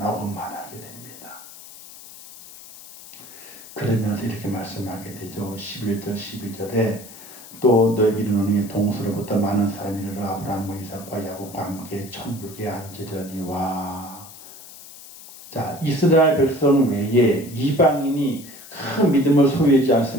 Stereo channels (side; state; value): left; noise; hiss, 17 dB below the sound